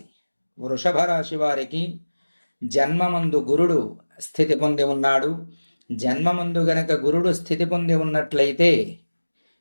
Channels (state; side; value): inverted; both; correlation -1.00